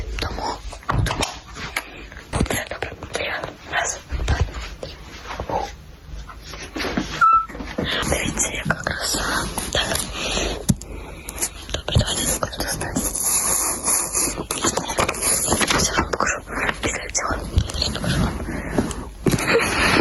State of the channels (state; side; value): identical; both; correlation 1.00